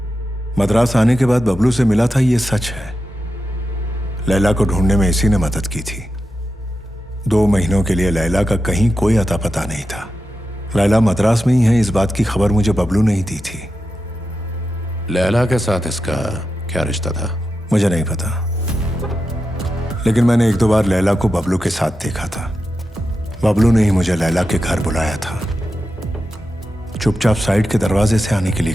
मद्रास आने के बाद बबलू से मिला था, ये सच है। लैला को ढूंढने में इसी ने मदद की थी। 2 महीनों के लिए लैला का कहीं कोई अता पता नहीं था। लैला मद्रास में ही है, इस बात की खबर मुझे बबलू ने ही दी थी। लैला के साथ इसका क्या रिश्ता था? मुझे नहीं पता, लेकिन मैंने 1-2 बार लैला को बबलू के साथ देखा था। बबलू ने ही मुझे लैला के घर बुलाया था। चुपचाप साइड के दरवाजे से आने के लिए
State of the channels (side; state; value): both; normal; correlation 0.90